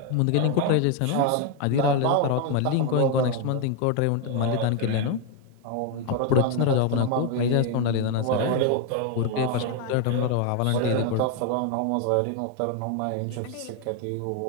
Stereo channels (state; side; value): different; both; correlation 0.01